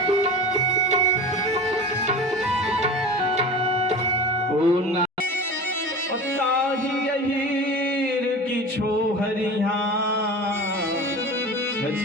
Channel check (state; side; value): normal; both; correlation 0.33